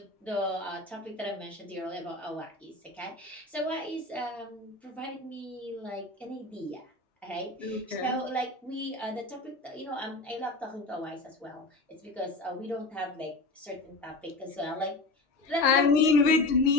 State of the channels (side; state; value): right; quieter; 3.2 dB